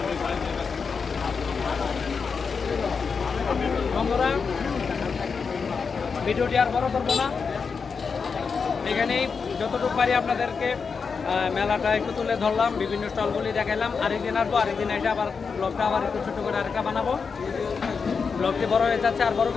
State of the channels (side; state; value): right; quieter; 5.4 dB